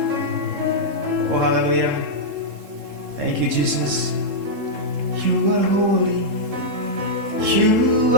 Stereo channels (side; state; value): left; late; 3.7 ms